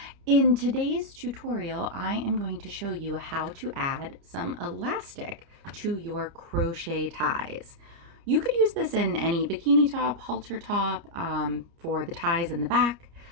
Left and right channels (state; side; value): late; left; 29 ms